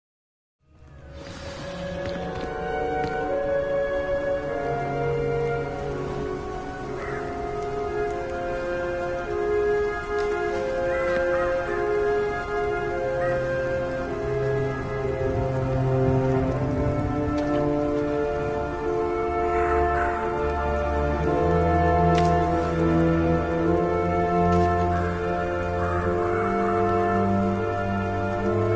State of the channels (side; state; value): both; identical; correlation 1.00